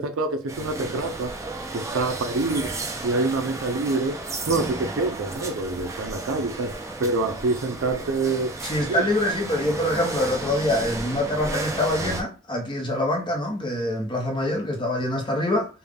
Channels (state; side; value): normal; both; correlation 0.33